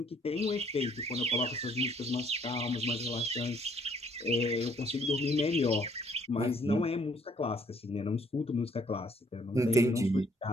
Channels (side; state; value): both; normal; correlation 0.64